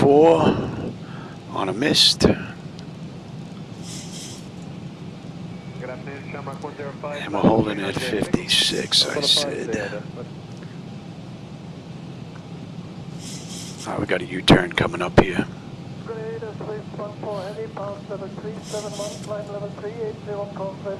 on a mist. And we're holding at 56, I said. Alright, we got a U-turn coming up here.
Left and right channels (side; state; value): both; identical; correlation 1.00